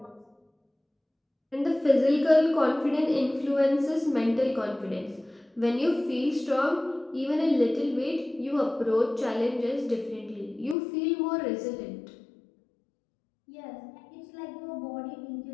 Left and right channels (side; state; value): right; drops out; at 10.8 s